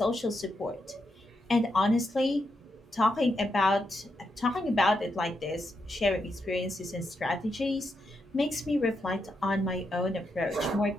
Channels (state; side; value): normal; both; correlation 0.83